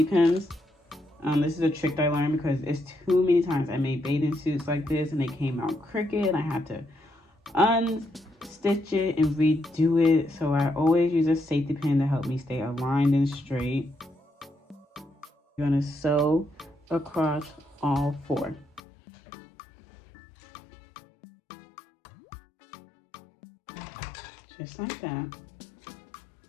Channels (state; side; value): drops out; right; at 18.8 s